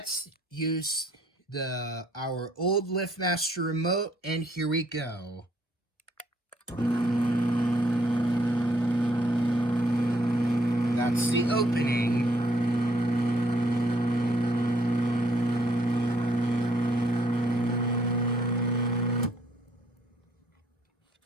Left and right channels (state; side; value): normal; both; correlation 0.67